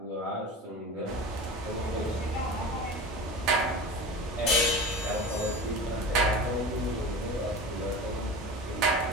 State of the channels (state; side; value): normal; both; correlation 0.32